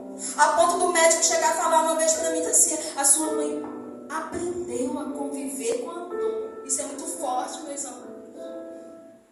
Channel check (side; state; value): both; identical; correlation 1.00